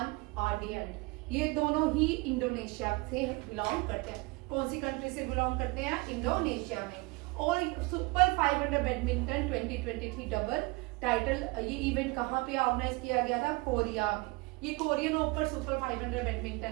आर्डियंट। ये दोनों ही इंडोनेशिया से बिलोंग करते हैं। कौन सी कंट्री से बिलोंग करते हैं? इंडोनेशिया में। और सुपर 500 बैडमिंटन 2023 डबल टाइटल, ये इवेंट कहाँ पे ऑर्गेनाइज किया गया था? कोरिया में। ये कोरियन ओपन सुपर 500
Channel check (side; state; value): left; quieter; 25.5 dB